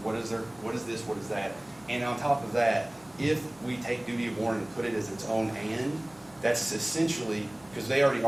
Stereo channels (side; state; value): right; noise; hum, 28 dB below the sound